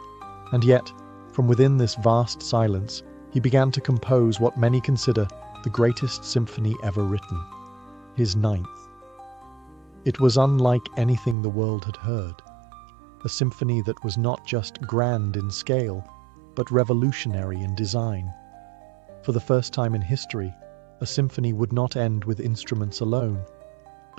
And yet, from within this vast silence, he began to compose what many consider the greatest symphony ever written, his ninth. It was unlike anything the world had heard, a symphony that was not just grand in scale, but revolutionary in design. For the first time in history, a symphony would not end with instruments alone,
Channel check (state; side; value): drops out; left; at 11.4 s